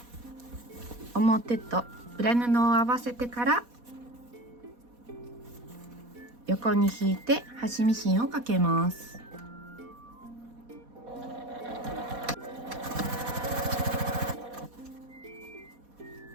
表と裏布を合わせてから横に引いて端ミシンをかけます。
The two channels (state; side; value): late; left; 4.1 ms